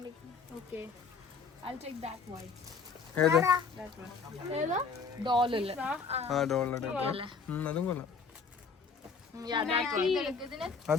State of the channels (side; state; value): right; quieter; 5.1 dB